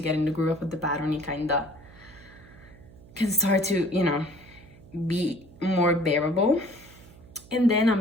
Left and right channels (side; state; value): right; noise; hum, 22 dB below the sound